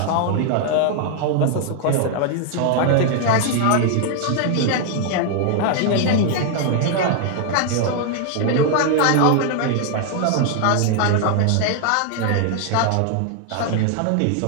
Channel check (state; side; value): different; both; correlation 0.00